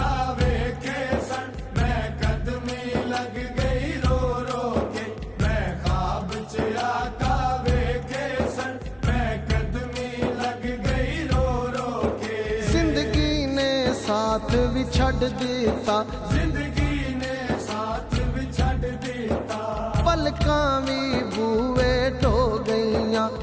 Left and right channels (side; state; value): both; identical; correlation 1.00